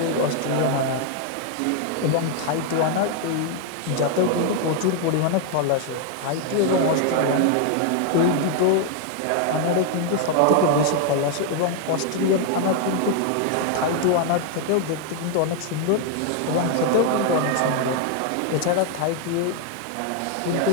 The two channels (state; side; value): different; both; correlation 0.00